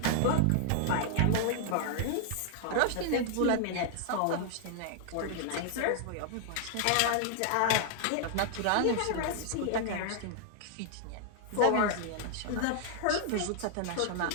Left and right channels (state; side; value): different; both; correlation 0.00